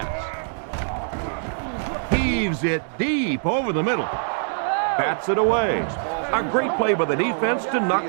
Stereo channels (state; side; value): silent; left; 63 dB below the other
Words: Heaves it deep over the middle. Bats it away. A great play by the defense to